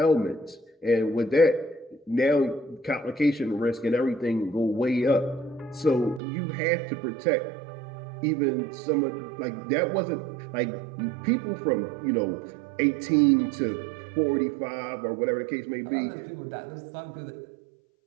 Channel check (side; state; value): left; drops out; at 6.2 s